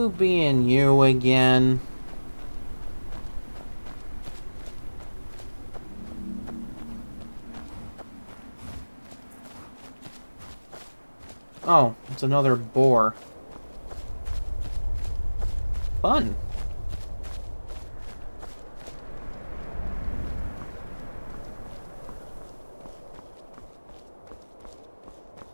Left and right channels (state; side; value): inverted; both; correlation -1.00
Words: being you again. Oh, it's another boar. Fun.